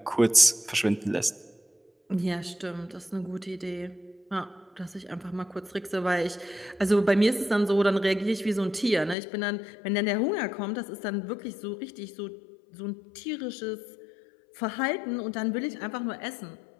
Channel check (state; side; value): drops out; right; at 9.2 s